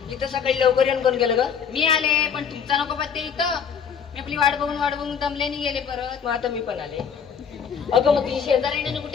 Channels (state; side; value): quieter; right; 7.1 dB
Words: इथं सकाळी लवकर येऊन कोण गेलं ग? मी आले पण तुमचा नको पत्ते इथं. मी आपली वाट बघून दमल्याने गेले परत. मग आता मी पण आले. अगं मग तुझी शेजारीने